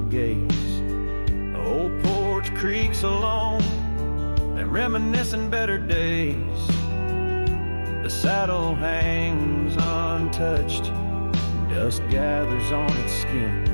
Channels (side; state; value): both; inverted; correlation -1.00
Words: gaze. The old porch creaks alone and reminiscing better days. The saddle hangs untouched, dust gathers on its